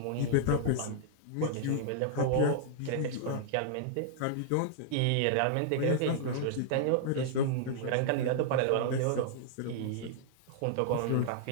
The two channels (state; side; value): different; both; correlation -0.01